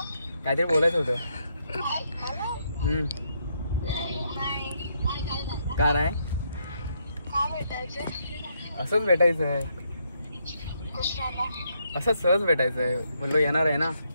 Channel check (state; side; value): inverted; both; correlation -0.76